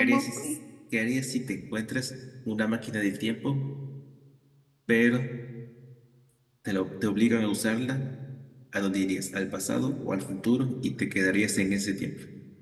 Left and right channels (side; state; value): both; identical; correlation 1.00